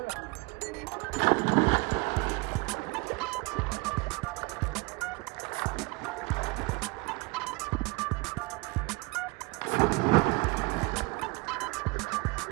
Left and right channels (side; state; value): left; quieter; 27.1 dB